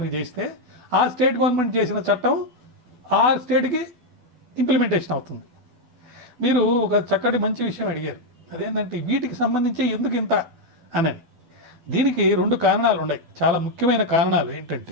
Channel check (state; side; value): late; left; 12 ms